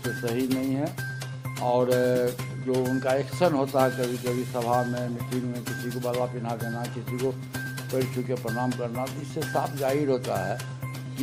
सही नहीं है। और जो उनका एक्शन होता है कभी कभी सभा में, मीटिंग में, किसी को बाला पहना देना, किसी को पैर छू के प्रणाम करना, तो इससे साफ जाहिर होता है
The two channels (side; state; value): both; identical; correlation 1.00